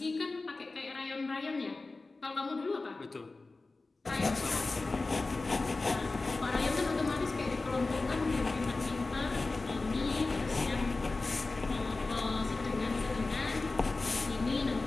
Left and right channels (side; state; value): right; quieter; 3.5 dB